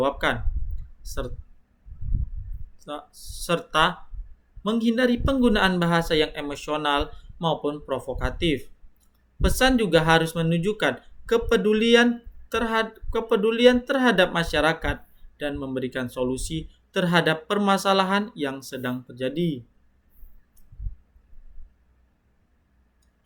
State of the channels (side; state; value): both; identical; correlation 1.00